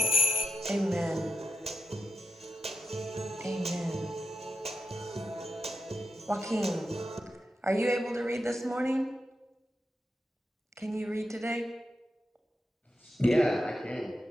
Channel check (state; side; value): normal; both; correlation 0.87